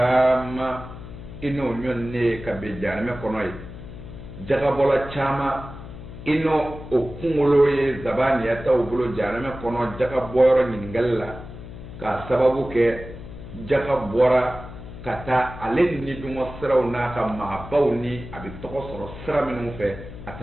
ino nyonne kabe jana me kono yi jaga bola chama ino okungolo ye zabani ya ta ubulo jarame kono jaga boro nyingalla ka sababu ke jaga bora kata alen ni dumo siraw na ka ma bawni abi toko soro sira minu fe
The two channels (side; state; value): left; noise; hum, 13 dB below the sound